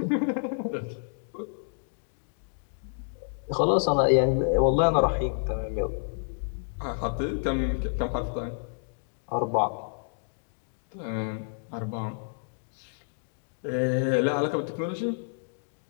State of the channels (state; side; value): silent; right; digital silence